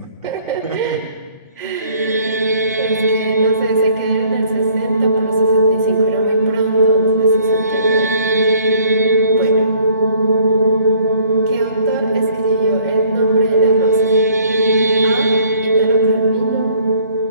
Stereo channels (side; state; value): both; inverted; correlation -0.59